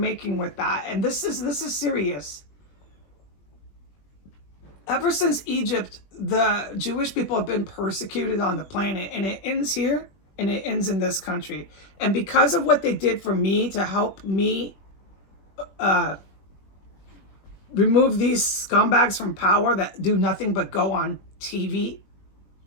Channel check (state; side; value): late; right; 21 ms